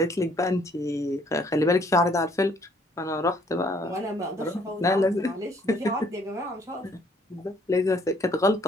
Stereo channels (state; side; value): normal; both; correlation 0.63